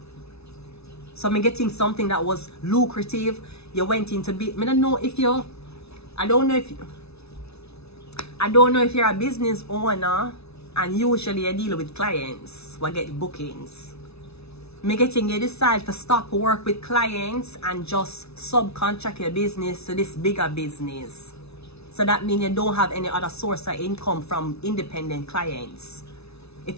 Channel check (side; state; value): right; late; 0.80 ms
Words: So I'm getting something that was lucrative. You went into I don't know if you're a business owner. And usually I deal with clients who get bookings. I'm getting you decide to stop work with clients and just subcontract your business to this bigger business. So that means you don't have any other source of income from independent clients. If